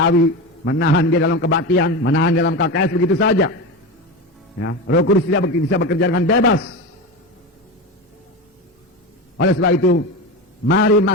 menahan dia dalam kebaktian, menahan dia dalam KKS, begitu saja. Ya, Roh Kudus tidak bisa bekerja dengan bebas. Oleh sebab itu, mari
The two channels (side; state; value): both; normal; correlation 0.22